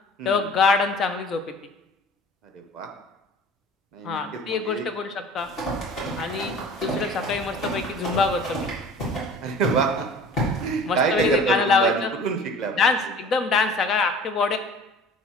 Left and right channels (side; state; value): both; normal; correlation 0.44